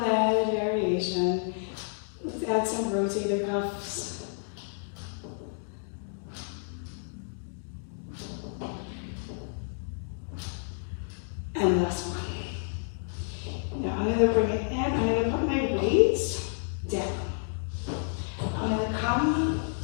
variation. Let's add some rotator cuffs. And last one. Now I'm going to bring it in. I'm going to put my weights down. I'm going to come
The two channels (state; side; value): silent; right; digital silence